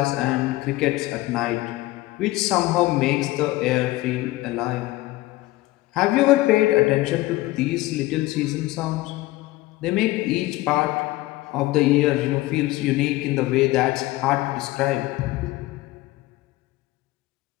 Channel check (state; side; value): quieter; right; 18.5 dB